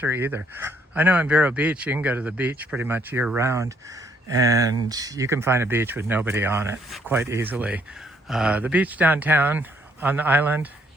either. I know in Vero Beach, you can go to the beach pretty much year round, and you can find a beach with nobody on it quite easily. The beach downtown on the island,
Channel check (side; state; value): both; normal; correlation 0.69